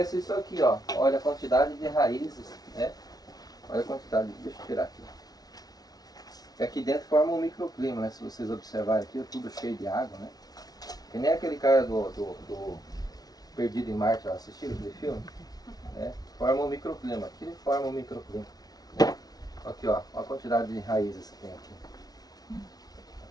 isso aqui, ó. Olha a quantidade de raízes, né? Olha a quantidade, deixa eu tirar aqui. Aqui dentro forma um microclima, né? Se vocês observarem aqui, é tudo cheio de água, né? Que nem aquele cara do Perdido em Marte, ó, assistiram aquele filme? Né? Forma um microclima, aqui forma um microclima. Né? Aqui, ó, a quantidade de raízes que tem aqui.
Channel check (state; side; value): late; right; 0.19 ms